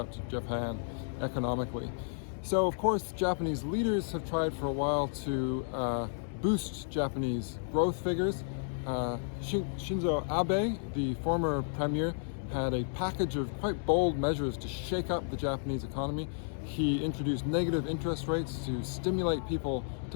to Japan economically. So of course, Japanese leaders have tried for a while to boost Japanese growth figures. Shinzo Abe, the former premier, had a package of quite bold measures to shake up the Japanese economy. He introduced negative interest rates to stimulate people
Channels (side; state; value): right; silent; digital silence